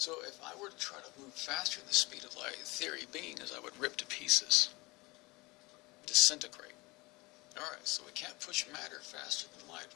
if I were to try to move faster than the speed of light, the theory being is I would rip to pieces, disintegrate. Alright, so we can't push matter faster than light,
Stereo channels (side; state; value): right; quieter; 23.6 dB